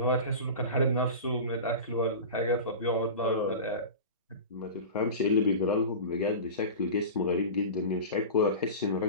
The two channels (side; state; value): both; inverted; correlation -0.30